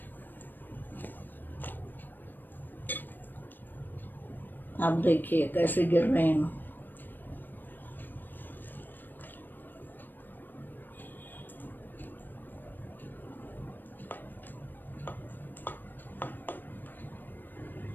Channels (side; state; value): right; late; 0.092 ms